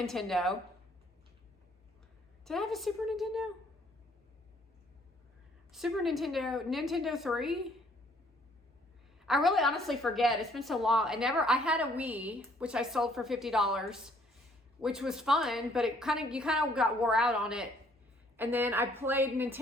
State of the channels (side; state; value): both; normal; correlation 0.63